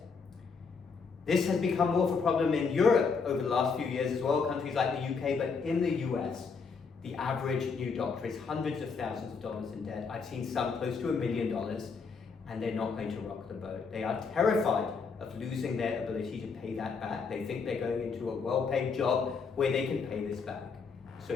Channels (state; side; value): quieter; right; 5.2 dB